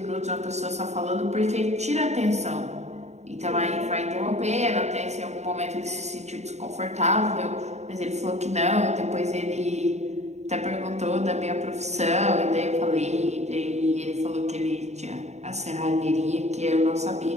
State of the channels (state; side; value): late; left; 0.32 ms